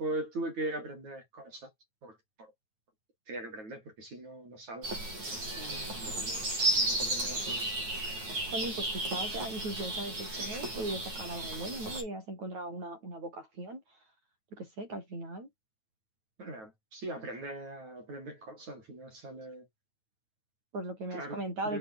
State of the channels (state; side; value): late; left; 9.2 ms